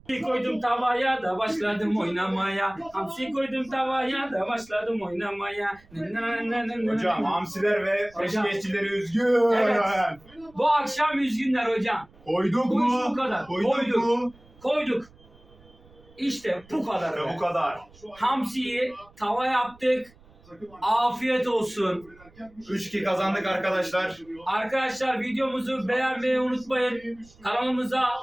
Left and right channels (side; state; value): right; noise; rumble, 26 dB below the sound